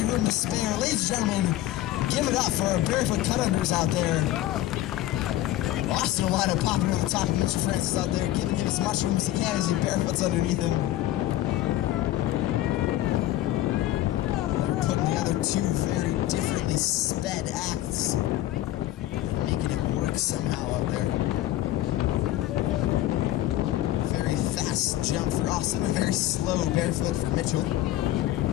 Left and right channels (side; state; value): right; quieter; 14.3 dB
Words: room to spare. Ladies and gentlemen, give it up for our barefoot cut-unders out there. Austin Olana popping over the top of Mitchell Francis out there, giving him as much room as he can as he barefoots underneath him. They're putting together two very differently sped acts, making it work somehow out there. Very fast jump for Austin, a very slow barefoot for Mitchell.